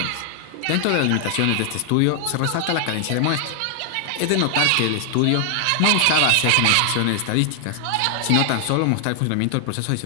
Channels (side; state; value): both; different; correlation 0.00